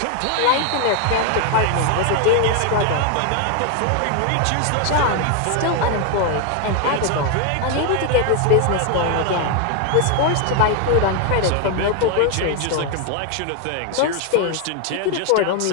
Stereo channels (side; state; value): both; different; correlation 0.01